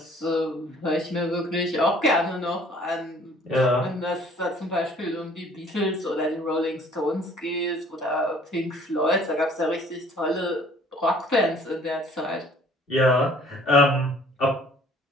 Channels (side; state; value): both; normal; correlation 0.55